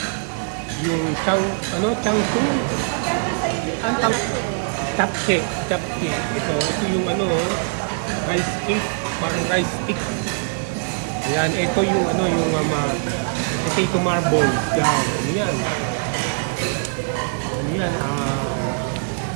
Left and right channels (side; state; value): left; silent; digital silence